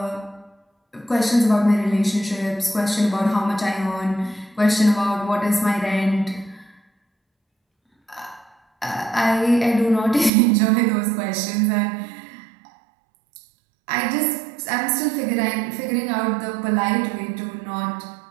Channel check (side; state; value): left; drops out; at 10.3 s